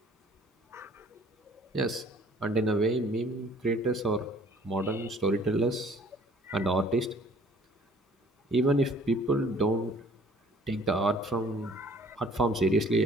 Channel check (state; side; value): normal; both; correlation 0.55